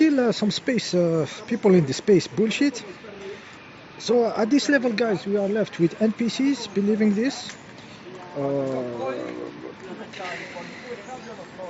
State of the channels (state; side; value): identical; both; correlation 1.00